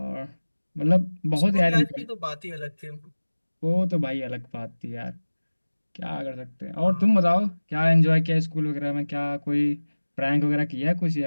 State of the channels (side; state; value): both; inverted; correlation -1.00